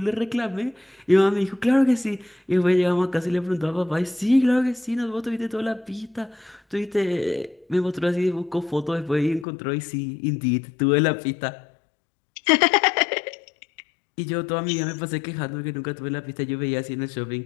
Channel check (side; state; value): right; drops out; at 9.5 s